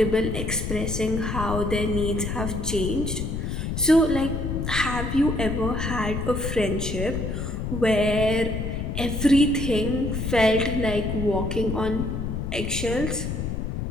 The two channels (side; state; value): left; noise; rumble, 3 dB below the sound